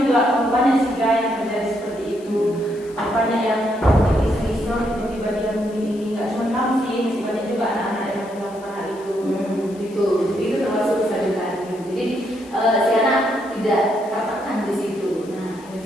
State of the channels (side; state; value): left; noise; hiss, 24 dB below the sound